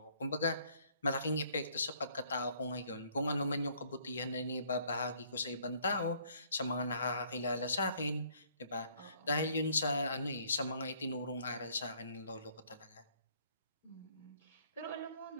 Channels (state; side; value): inverted; both; correlation -0.63